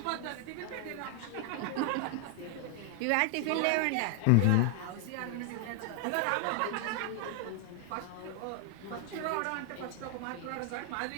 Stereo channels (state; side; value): different; both; correlation 0.00